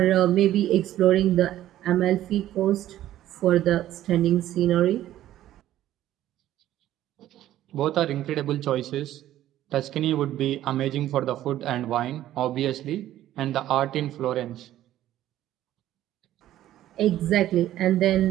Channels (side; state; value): left; quieter; 13.2 dB